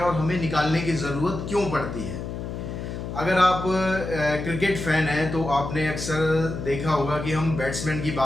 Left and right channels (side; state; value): left; noise; hum, 6 dB below the sound